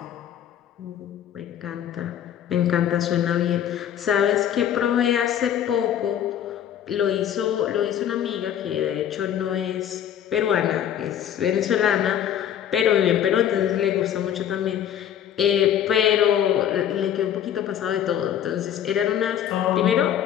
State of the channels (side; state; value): right; quieter; 10.0 dB